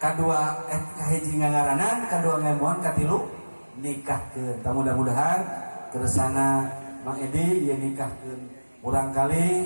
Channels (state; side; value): inverted; both; correlation -1.00